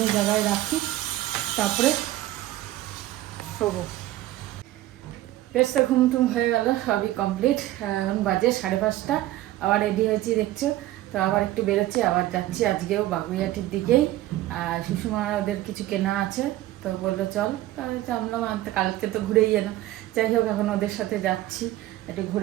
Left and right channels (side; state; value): left; quieter; 15.4 dB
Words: জায়গায় রাখি, তারপরে শোবো। বেশ তো ঘুম টুম হয়ে গেল, সবই কমপ্লিট। এখন বাজে 5:30, আবার রেডি হয়েছি দেখছো। তো আবার একটু বেরোচ্ছি, আবার যাচ্ছি আজকেও বাগুইয়াটির দিকেই। আর সুষমা ওদের কিছু কেনা আছে, তো বললো চল, তাহলে জানলাম কালকে তো ঘুরেই এলাম। যাই হোক, এখন ওদের সাথে যাচ্ছি, একটু